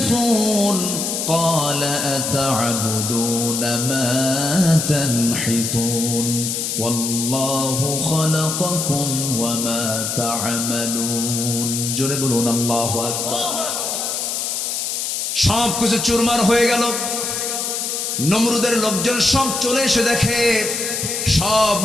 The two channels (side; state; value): left; noise; hiss, 2 dB below the sound